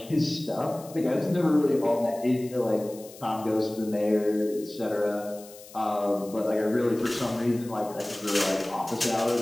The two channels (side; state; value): left; noise; hiss, 19 dB below the sound